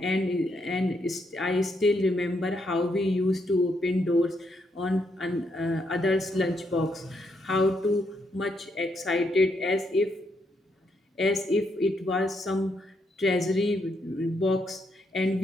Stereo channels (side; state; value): both; normal; correlation 0.77